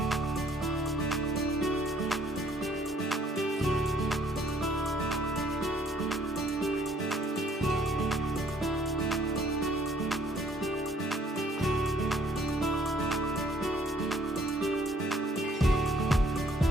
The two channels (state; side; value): normal; both; correlation 0.62